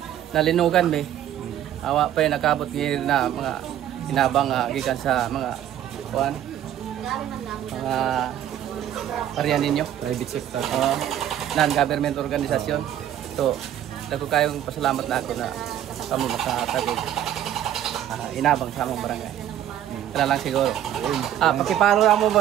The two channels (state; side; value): quieter; left; 11.1 dB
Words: nalinugan be. Awa pa nakabot ngayon na mga inabang gikan sa mga kuan. Mga paryan ninyo, private sector. Non-government organisasyon. So, dako kayong pasalamat na ako na kami makatagog. Inabang sa among barangay. Kaya lang siguro. Pakipalo lang mo